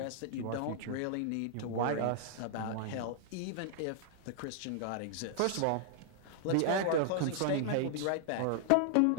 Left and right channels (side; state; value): both; different; correlation -0.01